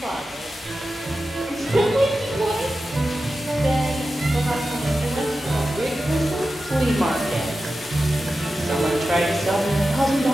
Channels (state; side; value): normal; both; correlation 0.92